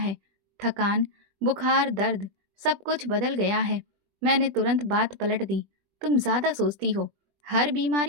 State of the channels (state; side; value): late; left; 20 ms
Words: थकान, बुखार, दर्द, सब कुछ बदल गया है। मैंने तुरंत बात पलट दी। तुम ज्यादा सोचती हो, हर